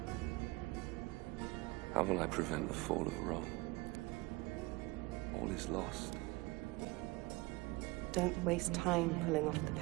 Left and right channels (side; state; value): left; quieter; 23.2 dB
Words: How will I prevent the fall of Rome? All is lost. Don't waste time pulling off the